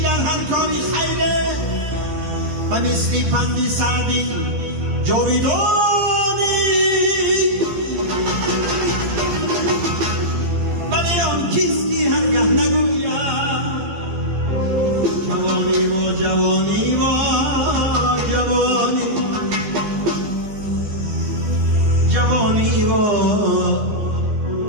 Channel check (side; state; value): left; late; 14 ms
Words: در هر کاری خیره و مثل پندی سعدی جاویدانی، ولی آن کیستی هرگه نگوید جوانی و جوانی و جوانی. جوانی و